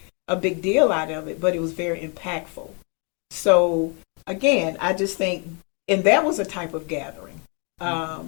a big deal out of it, but it was very impactful. So again, I just think, and that was a type of gathering,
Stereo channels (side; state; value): right; quieter; 35.5 dB